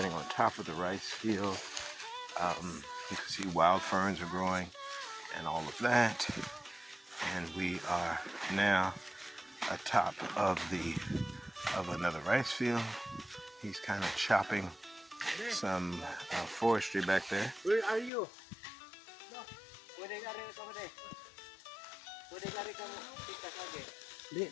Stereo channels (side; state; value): right; drops out; at 18.1 s